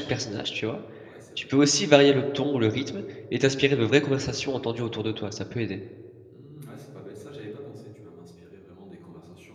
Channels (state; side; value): identical; both; correlation 1.00